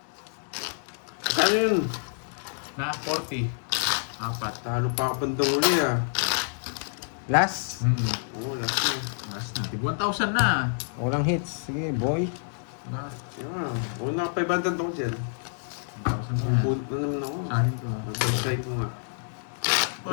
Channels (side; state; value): right; silent; digital silence